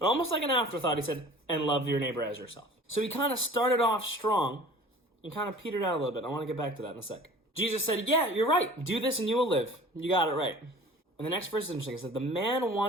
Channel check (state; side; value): normal; both; correlation 0.44